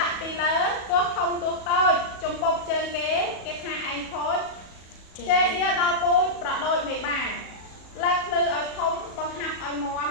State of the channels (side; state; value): right; late; 37 ms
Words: ដាក់ពីលើទោះធំទោះតូចចំពប់ជើងគេថាឯងខូចជេដៀដល់ពូជប្រដូចមេបាលើកភ្លឺឲ្យធំបង្ហាប់ឲ្យមាំ